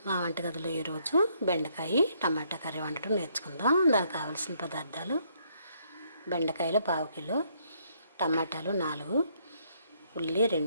మా వంటగదిలో ఈరోజు బెండకాయ టమాటా కర్రీ వండటం నేర్చుకుందాం. దానికి కావాల్సిన పదార్థాలు: బెండకాయలు 1/2 కిలో, టమాటాలు 4, ఉల్లి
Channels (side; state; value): both; inverted; correlation -0.70